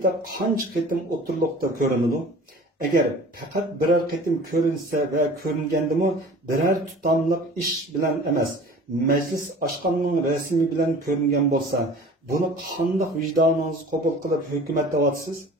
qancha qitim o'ttirliqda ko'rinadi? Agar faqat biror qitim ko'rinsa va ko'ringandimi, biror tutamliq ish bilan emas, majlis oshqonning rasmi bilan ko'ringan bo'lsa, buni qanday vijdoningiz qabul qilib hukumat deyapsiz?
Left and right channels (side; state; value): both; normal; correlation 0.43